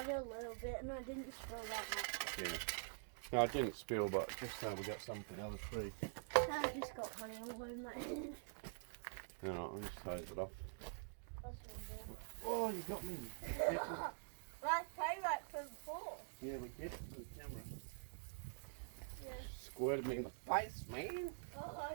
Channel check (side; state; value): left; silent; digital silence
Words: it a little bit, and I didn't spill that much. yeah. No, I didn't spill, but just so we got some for the other tree. I just got honey all over my hand. Alright, I'll just hose it off. That's what I'm doing. Oh, you got me. That's payback for before. Yeah, we get it for the camera. Yeah. Squirted me in the face, man. Oh,